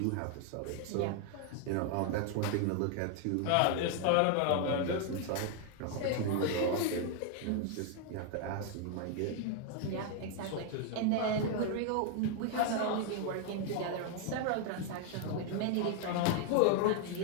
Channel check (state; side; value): different; both; correlation 0.00